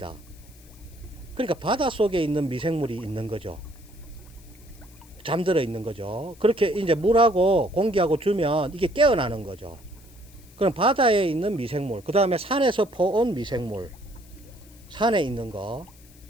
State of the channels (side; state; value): left; noise; hiss, 26 dB below the sound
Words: 그러니까 바다 속에 있는 미생물이 있는 거죠. 잠들어 있는 거죠. 그렇게 이제 물하고 공기하고 주면 이게 깨어나는 거죠. 그럼 바다에 있는 미생물, 그 다음에 산에서 퍼온 미생물, 산에 있는 거,